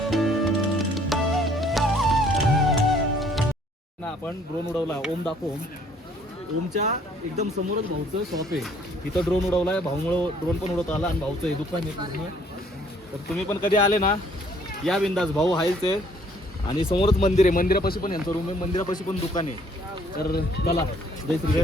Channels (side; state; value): both; normal; correlation 0.61